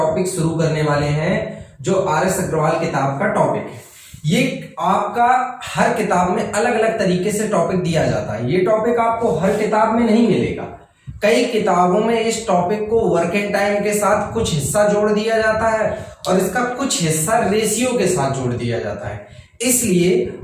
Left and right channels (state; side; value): identical; both; correlation 1.00